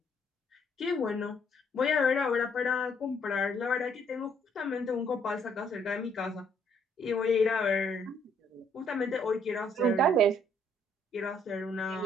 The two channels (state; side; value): normal; both; correlation 0.67